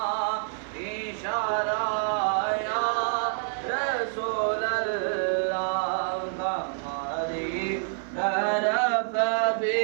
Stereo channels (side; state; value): left; silent; 60 dB below the other